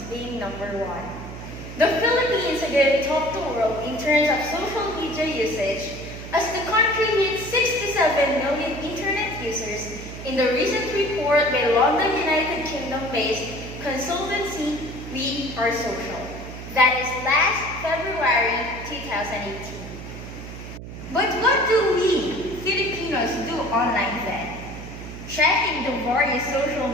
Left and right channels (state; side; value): noise; right; hum, 11 dB below the sound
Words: being number one. The Philippines again topped the world in terms of social media usage as the country hit 67 million internet users in the recent report by London, United Kingdom-based consultancy We Are Social. That is last February 2018. But what do we, Filipinos, do online then? Checking the various social